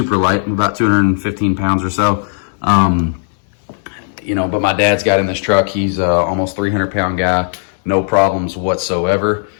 light. I'm about 215 pounds or so. But my dad's got in this truck. He's almost 300-pound guy. No problems whatsoever.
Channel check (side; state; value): right; silent; digital silence